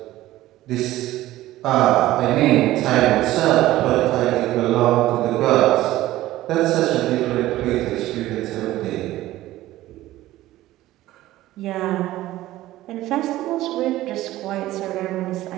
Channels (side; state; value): left; quieter; 15.7 dB